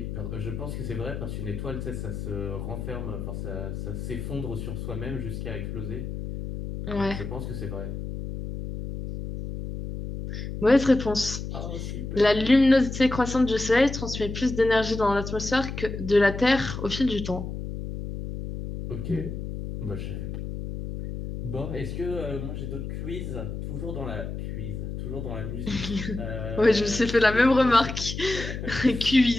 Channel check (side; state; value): left; noise; hum, 6 dB below the sound